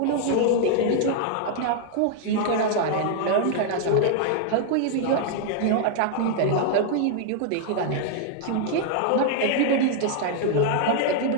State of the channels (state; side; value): different; both; correlation 0.00